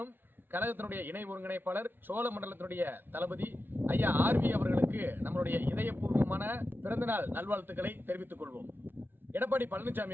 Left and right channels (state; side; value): late; left; 0.097 ms